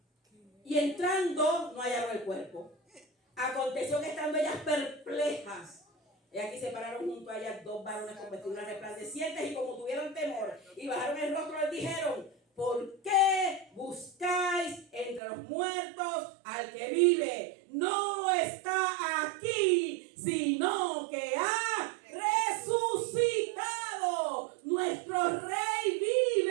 Y entrando, no hallaron el cuerpo. Aconteció que estando ellas perplejas, y aquí se pararon junto a ellas 2 varones con vestiduras resplandecientes, y como tuvieron temor y bajaron el rostro, les dijeron: ¿por qué buscáis entre los muertos al que vive? No está aquí, sino que ha resucitado. Nuestro Rey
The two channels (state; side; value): drops out; left; at 15.2 s